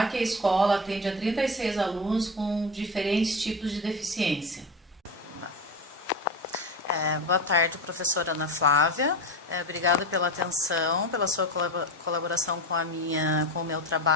que a escola atende a 36 alunos com diferentes tipos de deficiência. Boa tarde, professora Ana Flávia. Obrigada pela atenção, pela sua colaboração com o meu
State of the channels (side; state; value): both; normal; correlation 0.22